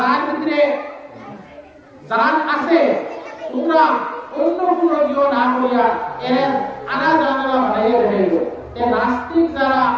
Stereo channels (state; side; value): identical; both; correlation 1.00